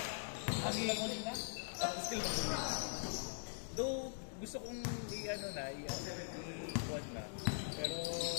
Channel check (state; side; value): silent; right; digital silence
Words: Ang ilang ulit na? Still though, gusto kong i-ano na, i-quad na. Pero,